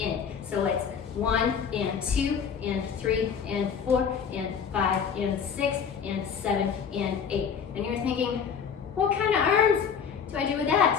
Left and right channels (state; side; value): quieter; right; 7.0 dB